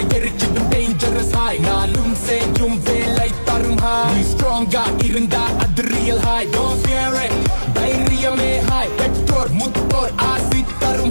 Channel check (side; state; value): both; inverted; correlation -1.00